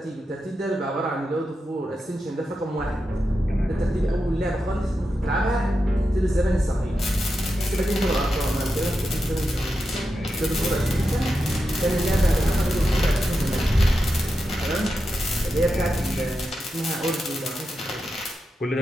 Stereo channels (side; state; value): both; normal; correlation 0.89